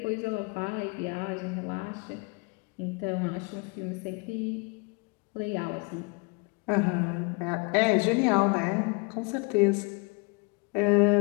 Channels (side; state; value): right; quieter; 31.4 dB